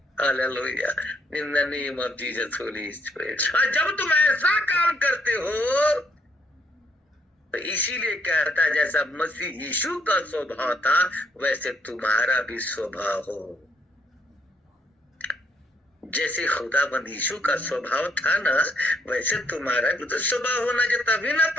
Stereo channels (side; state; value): both; normal; correlation 0.71